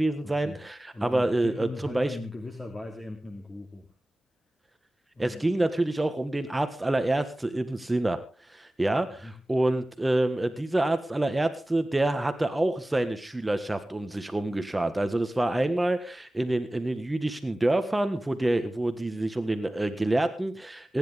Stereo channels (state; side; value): normal; both; correlation 0.97